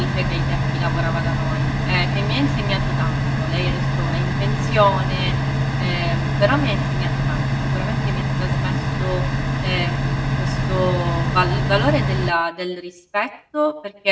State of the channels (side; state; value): both; identical; correlation 1.00